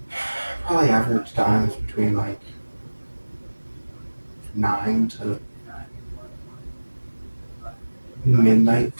probably average times between like 9 to midnight,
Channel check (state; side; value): inverted; both; correlation -1.00